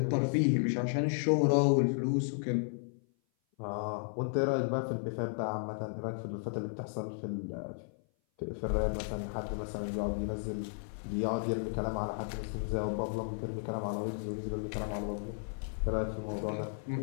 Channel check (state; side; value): silent; right; 55 dB below the other